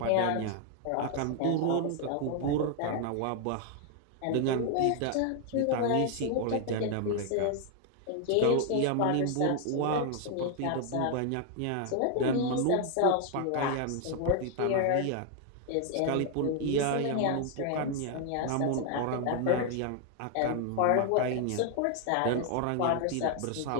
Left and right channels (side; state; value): both; different; correlation 0.00